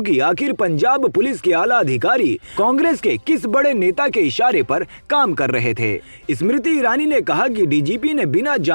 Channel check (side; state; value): both; inverted; correlation -1.00